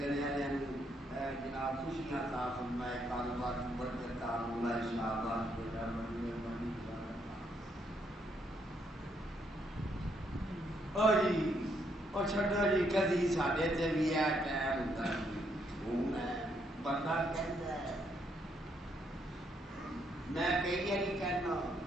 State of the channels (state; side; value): normal; both; correlation 0.74